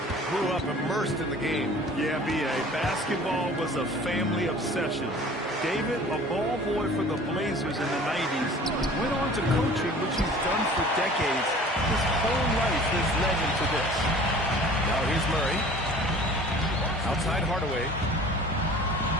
grew up immersed in the game. Yeah, B.A., basketball was a family obsession. David, a ball boy for the Blazers in the 90s, went on to coaching, which he's done for decades. His whole life has led him to this. Now here's Murray. Outside Hardaway.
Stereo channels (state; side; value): normal; both; correlation 0.46